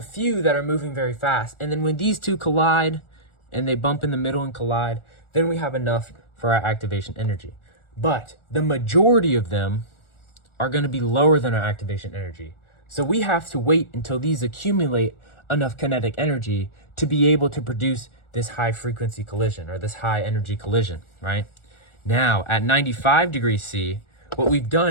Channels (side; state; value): right; late; 1.4 ms